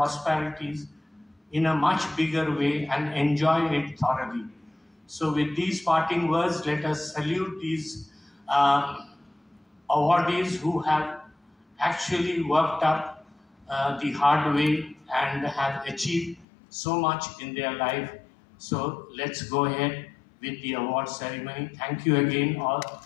in a much bigger way and enjoy it thoroughly. So with these parting words, let us salute these awardees who have actually worked up the hard way and have achieved so much in their life. So let's go ahead with the award ceremony. Thank you again,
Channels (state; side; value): drops out; right; at 16.4 s